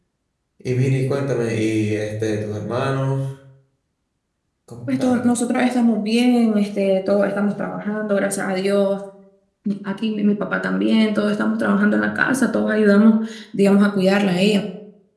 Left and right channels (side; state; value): both; identical; correlation 1.00